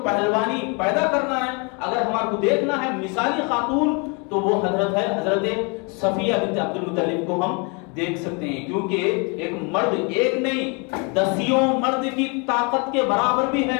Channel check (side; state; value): right; quieter; 32.8 dB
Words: پہلوانی پیدا کرنا ہے، اگر ہمارے کو دیکھنا ہے مثالی خاتون تو وہ حضرت صفیہ بنت عبد المطلب کو ہم دیکھ سکتے ہیں، کیونکہ ایک مرد ایک نہیں 10 مرد کی طاقت کے برابر بھی ہے،